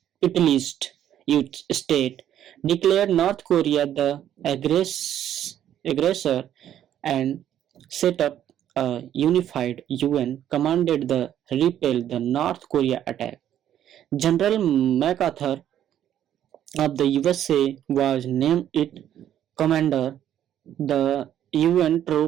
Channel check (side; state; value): left; quieter; 10.8 dB